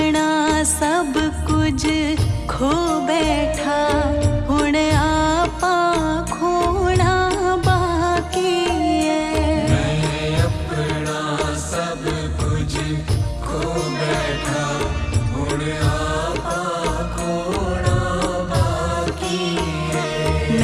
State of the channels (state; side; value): identical; both; correlation 1.00